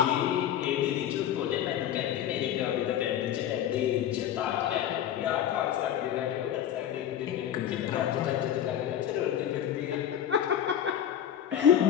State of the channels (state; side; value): quieter; right; 10.3 dB